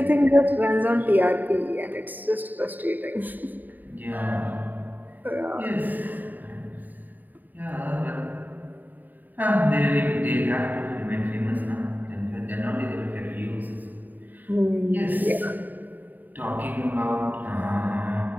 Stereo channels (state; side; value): late; left; 0.087 ms